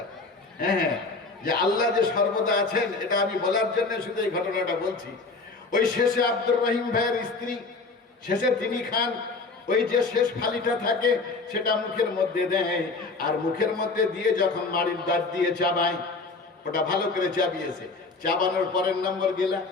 হ্যাঁ, যে আল্লাহ যে সর্বদা আছেন, এটা আমি বলার জন্য শুধু এই ঘটনাটা বলছি। ওই শেষে আব্দুর রহিম ভাইয়ের স্ত্রী শেষে তিনি খান, ওই যে শেষ ফালিটা থাকে সেটা মুখের মধ্যে দেয়, আর মুখের মধ্যে দিয়ে যখন মাড়ির দাঁত দিয়ে চাবায়, ওটা ভালো করে চাবিয়েছে, চাবানোর পরের নম্বর গেলা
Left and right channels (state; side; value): quieter; right; 3.9 dB